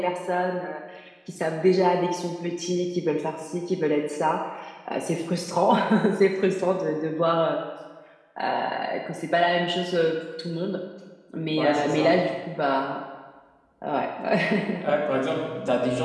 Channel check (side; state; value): both; identical; correlation 1.00